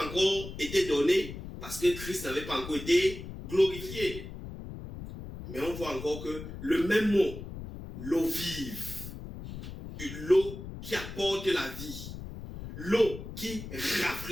encore été donné, parce que Christ n'avait pas encore été glorifié. Mais on voit encore que le même mot, l'eau vive, l'eau qui apporte la vie, l'eau qui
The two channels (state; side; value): noise; left; rumble, 10 dB below the sound